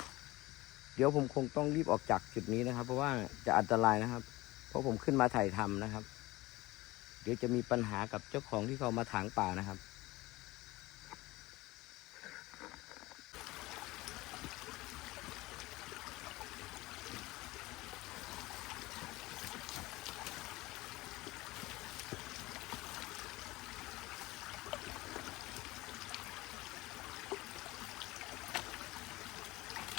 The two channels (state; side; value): quieter; right; 19.8 dB